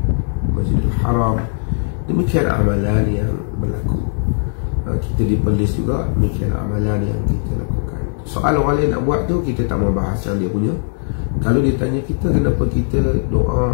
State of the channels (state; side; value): silent; right; 67 dB below the other